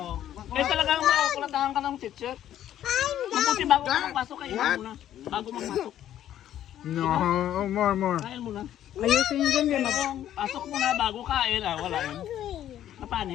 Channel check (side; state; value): right; quieter; 11.5 dB